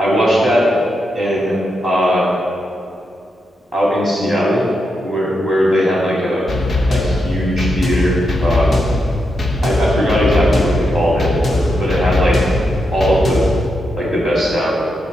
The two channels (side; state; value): both; normal; correlation 0.84